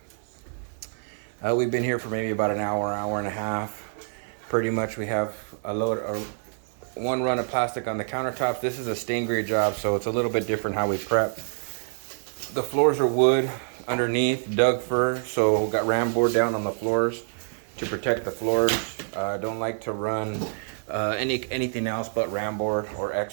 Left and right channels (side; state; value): left; silent; digital silence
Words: We've been here for maybe about an hour and a half. Pretty much we have one run of plastic on the countertops. This is a stain grade job, so it's a little bit different how we prep. The floors are wood underneath, Doug fir, so we got ram board down on the floors to protect the floors. Don't like to run anything else but ram board or